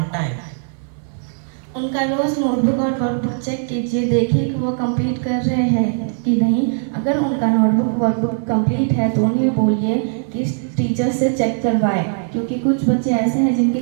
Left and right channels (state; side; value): silent; left; 66 dB below the other